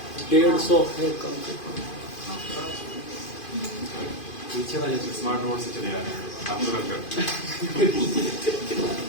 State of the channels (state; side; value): late; right; 2.5 ms